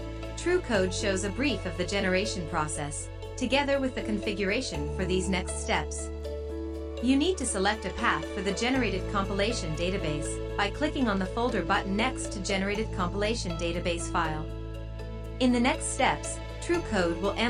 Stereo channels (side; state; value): both; identical; correlation 1.00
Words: TrueCode shows a brief of the generation process, together with the configuration for these next steps. You need to select a path for the generated compilation database by clicking on the folder button next to Generated Compilation Database file. In the next steps, TrueCode will